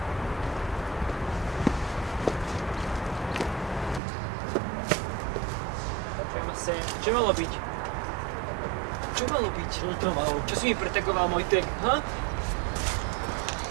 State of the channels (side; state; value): left; drops out; at 4.0 s